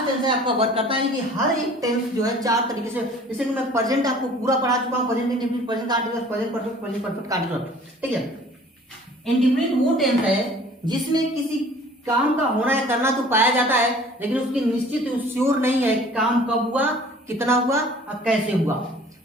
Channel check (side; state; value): both; normal; correlation 0.50